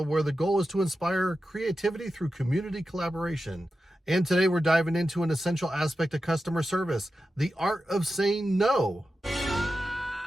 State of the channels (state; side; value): normal; both; correlation 0.91